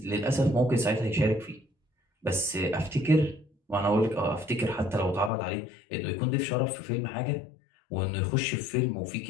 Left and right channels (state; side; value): drops out; right; at 5.3 s